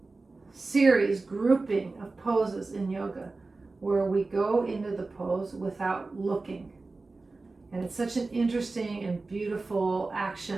series, grouping of poses in yoga where we go into the pose without looking. And it's such an interesting and beautiful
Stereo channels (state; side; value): quieter; left; 3.6 dB